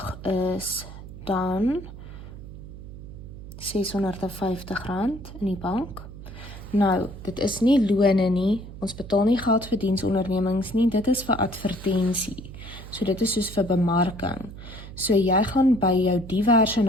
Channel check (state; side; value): noise; right; hum, 13 dB below the sound